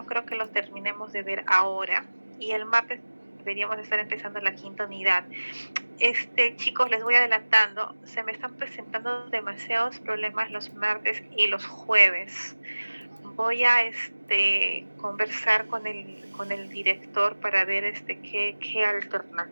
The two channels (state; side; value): inverted; both; correlation -1.00